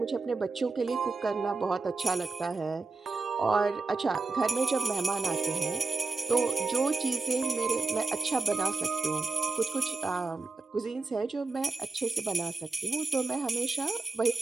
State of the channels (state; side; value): quieter; left; 3.8 dB